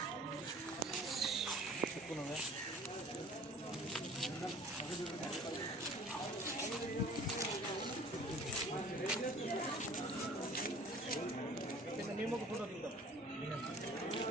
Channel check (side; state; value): both; normal; correlation 0.48